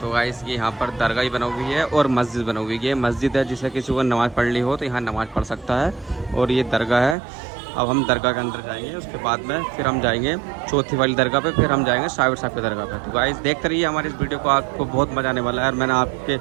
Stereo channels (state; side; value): drops out; left; at 7.2 s